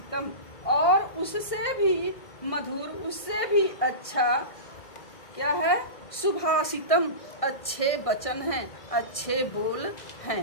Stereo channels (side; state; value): right; late; 1.6 ms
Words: और उससे भी मधुर, उससे भी अच्छा क्या है? सुभाषितम अच्छे वचन हैं, अच्छे बोल